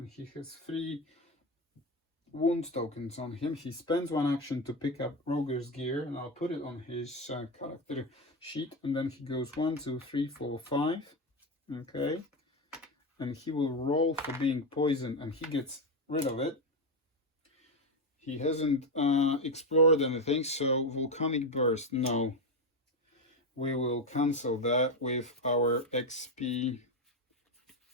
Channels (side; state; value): both; normal; correlation 0.12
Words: he has 3 wound tokens on him. He spends 1 action to pick up Roger's gear, and I'll put it on his character sheet, and then he goes 1, 2, 3, 4, 5. Okay, and he will roll for being poisoned, and he gets rid of it. He hasn't explored anything, so volcanic burst, no. We will cancel that with our XP.